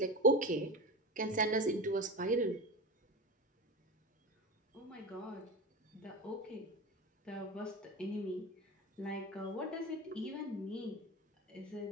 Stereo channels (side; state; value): both; normal; correlation 0.25